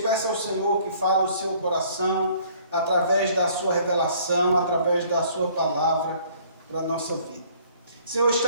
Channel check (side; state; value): both; inverted; correlation -0.58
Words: ao Senhor que fale o seu coração, através da sua revelação, através da sua palavra, para a nossa vida. Senhor,